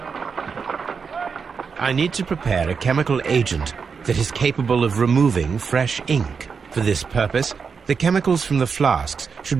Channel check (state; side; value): quieter; left; 5.7 dB